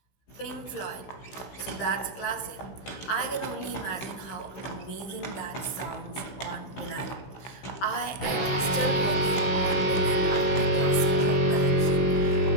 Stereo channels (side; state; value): right; late; 16 ms